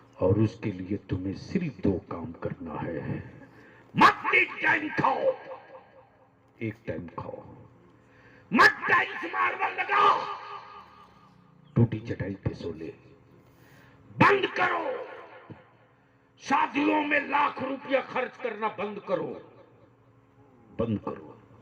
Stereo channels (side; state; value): both; identical; correlation 1.00